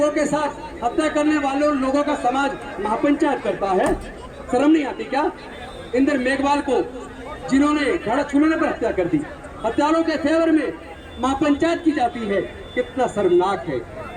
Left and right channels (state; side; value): identical; both; correlation 1.00